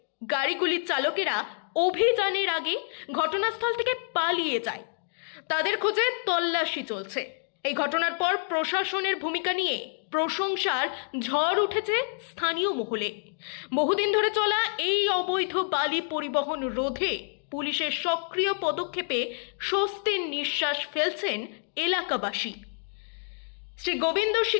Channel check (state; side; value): silent; right; 59 dB below the other